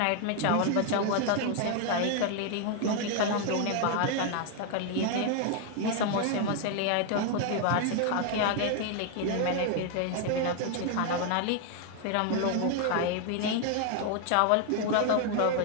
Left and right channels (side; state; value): both; different; correlation 0.00